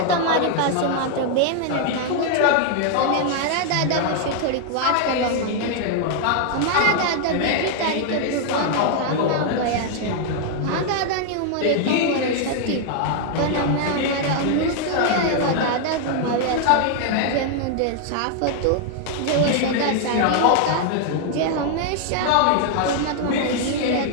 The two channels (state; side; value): different; both; correlation 0.00